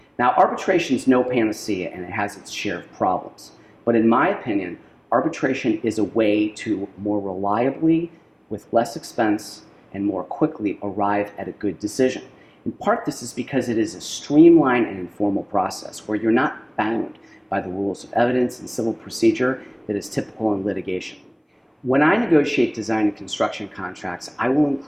Now, arbitration is no panacea and it has its share of problems. But in my opinion, arbitration is a way to more reliably, with less expense, and more quickly arrive at a good decision. In part, this is because it is a streamlined and informal process where you're not bound by the rules of evidence and civil procedure that is typical in litigation. When I negotiate design and construction contracts, I will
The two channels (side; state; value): both; identical; correlation 1.00